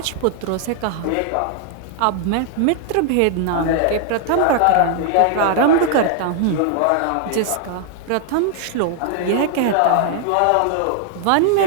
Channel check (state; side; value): different; both; correlation 0.00